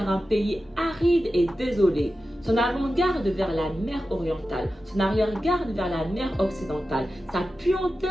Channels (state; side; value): normal; both; correlation 0.93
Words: un pays aride et désolé. Son avant-garde vers la mer orientale, son arrière-garde vers la mer occidentale. Sa